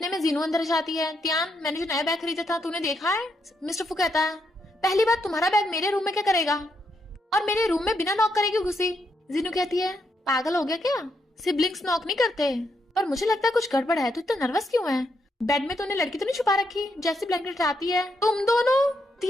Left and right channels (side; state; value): both; normal; correlation 0.79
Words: में जीनू अंदर जाती है। त्यान मैंने जो नया बैग खरीदा था तूने देखा है। मिस्टर फू कहता है पहली बात तुम्हारा बैग मेरे रूम में क्या करेगा, और मेरे रूम में बिना नॉक करे क्यों घुसी। जीनू कहती है पागल हो गया क्या, सिबलिंग्स नॉक नहीं करते, पर मुझे लगता है कुछ गड़बड़ है, तू इतना नर्वस क्यों है। बेड में तूने लड़की तो नहीं छुपा रखी, जैसे ब्लैंकेट आती है तुम दोनों।